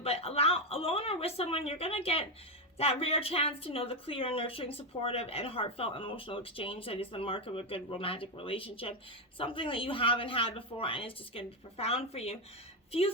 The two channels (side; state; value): both; normal; correlation 0.07